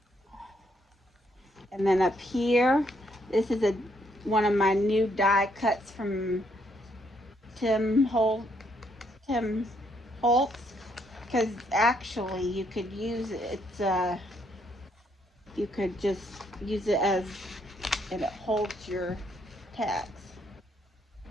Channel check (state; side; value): normal; both; correlation 0.72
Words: And then up here, this is one of my new die cuts from Tim Holtz. Because actually you could use it. You could just use it as, and it holds your tags.